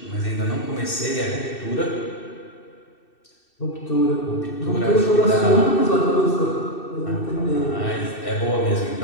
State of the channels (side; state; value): right; late; 2.6 ms